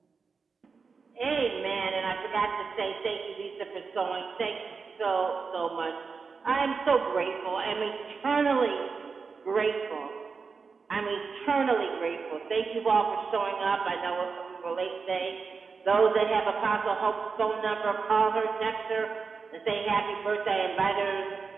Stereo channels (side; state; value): left; quieter; 5.0 dB